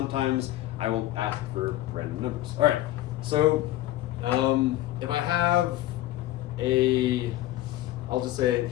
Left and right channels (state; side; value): quieter; right; 15.0 dB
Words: I will ask for random numbers. All right, so if I have I'll just say,